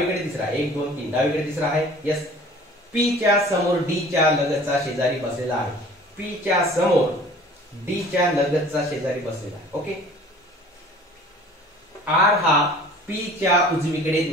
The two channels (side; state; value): both; normal; correlation 0.48